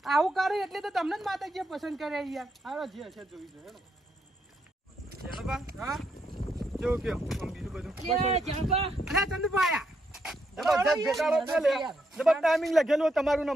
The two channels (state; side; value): normal; both; correlation 0.78